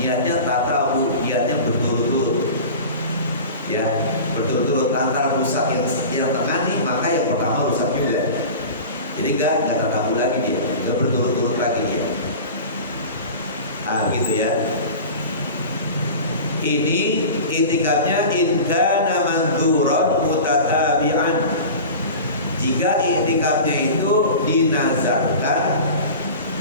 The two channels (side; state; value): both; inverted; correlation -0.35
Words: tatabu, niatnya berturut-turut. Ya, berturut-turut antara rusak yang tengah nih, maka yang pertama rusak juga. Jadi enggak tatabu lagi dia, enggak berturut-turut lagi dia. Gitu ya. Ini i'tikafnya in kana mandzuran mutatabi'an. Jika i'tikafnya itu dinazarkan